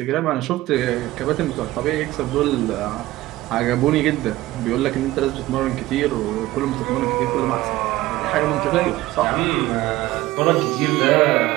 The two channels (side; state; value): left; quieter; 17.1 dB